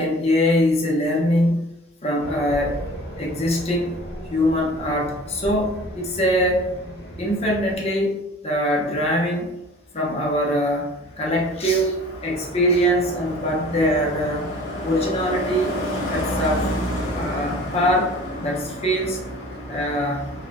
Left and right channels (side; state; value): both; normal; correlation 0.45